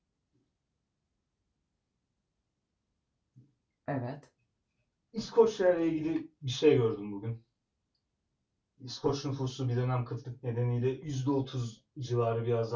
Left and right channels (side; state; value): both; identical; correlation 1.00